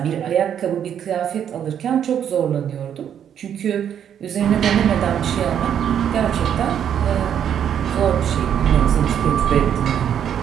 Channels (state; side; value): quieter; left; 9.1 dB